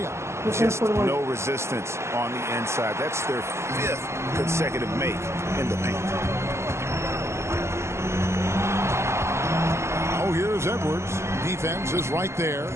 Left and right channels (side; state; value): left; late; 0.13 ms